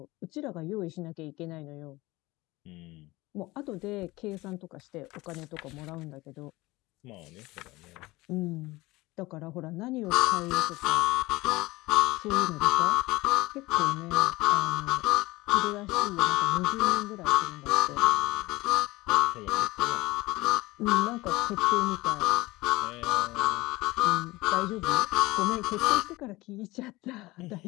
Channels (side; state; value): right; quieter; 20.4 dB